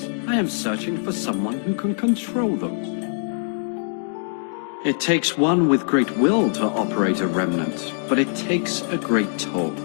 I am searching for someone who can control them. It takes one with great will to operate a Remnant, but it takes a great toll.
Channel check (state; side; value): silent; right; 63 dB below the other